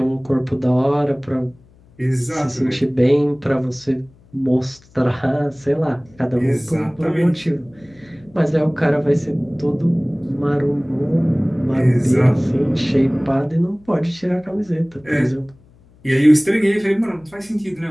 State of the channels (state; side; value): noise; left; hum, 28 dB below the sound